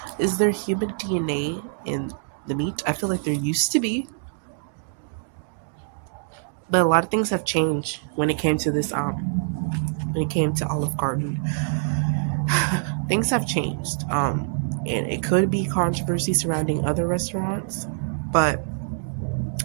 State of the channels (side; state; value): left; silent; digital silence